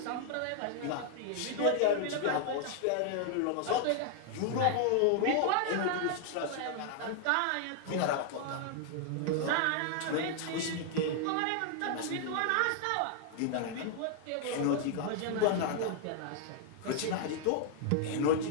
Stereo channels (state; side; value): different; both; correlation 0.00